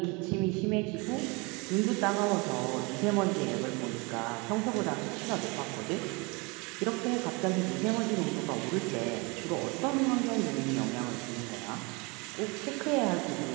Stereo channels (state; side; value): quieter; left; 28.3 dB